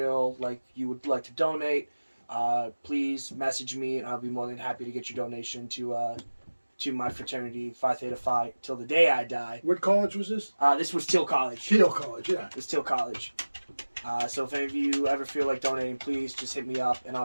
like you would like to donate, please message me, and I'll be more than happy to get your donation to my fraternity, Phi Theta Phi, till the day I die. What college was this? This was Teal College. Teal College, yeah. It was Teal College. So if any of you ever feel like donating, please just hit me up, and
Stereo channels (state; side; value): inverted; both; correlation -1.00